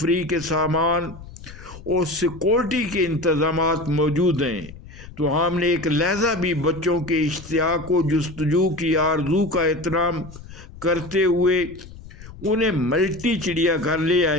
کے سامان اور سیکورٹی کے انتظامات موجود ہیں تو ہم نے ایک لحظہ بھی بچوں کے اشتیاق و جستجو کی آرزو کا احترام کرتے ہوئے انہیں ملٹی چڑیا گھر لے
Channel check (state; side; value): noise; left; rumble, 17 dB below the sound